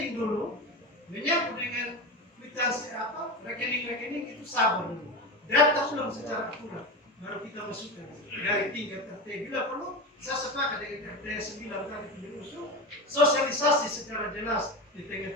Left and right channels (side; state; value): both; normal; correlation 0.22